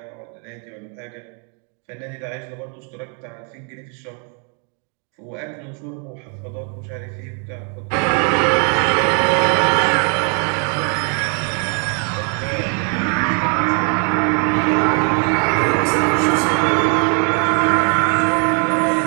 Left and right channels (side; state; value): left; quieter; 39.5 dB